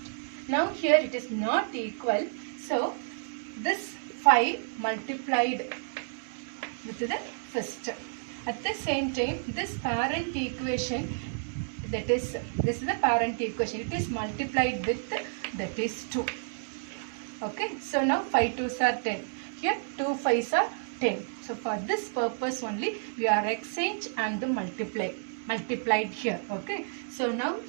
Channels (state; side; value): silent; left; digital silence